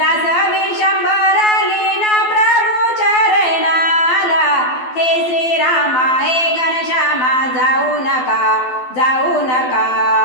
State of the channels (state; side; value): late; right; 12 ms